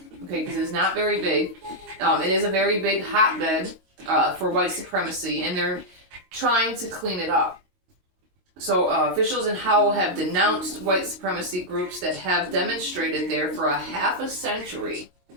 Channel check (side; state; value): left; late; 22 ms